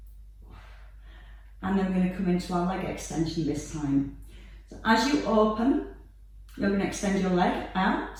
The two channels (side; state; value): both; identical; correlation 1.00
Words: And then we're going to come into our leg extension this time. So as you open, you're going to extend your leg